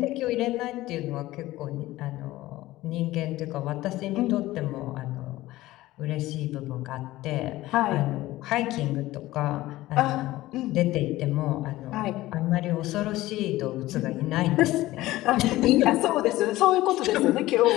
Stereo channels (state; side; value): quieter; right; 17.0 dB